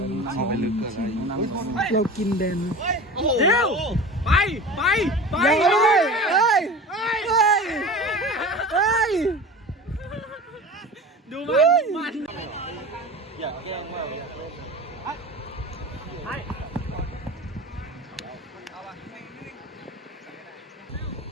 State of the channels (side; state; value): both; normal; correlation 0.34